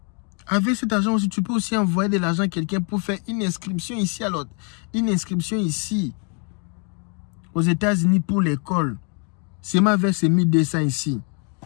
Avec cet argent aussi, tu peux aussi envoyer de l'argent à quelqu'un pour faire une inscription ici à l'autre. Une inscription ici, aux États-Unis pour l'école. C'est ma avec ces 1200 ici.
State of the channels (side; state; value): right; quieter; 37.9 dB